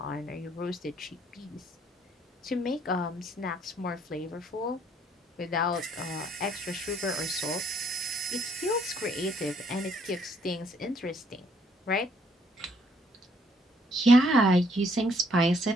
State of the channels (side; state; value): both; normal; correlation 0.67